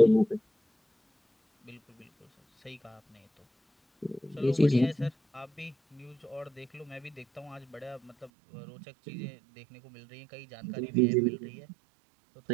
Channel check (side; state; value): left; drops out; at 8.3 s